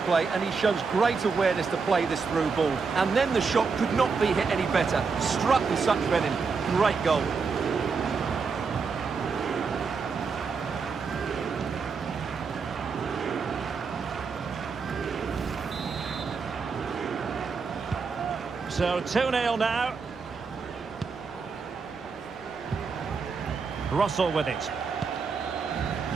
and he shows great awareness to play this through ball. And then the shot could not be hit any better. Struck with such venom. Great goal. So 2-0 now. Russell with it.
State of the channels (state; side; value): quieter; left; 5.1 dB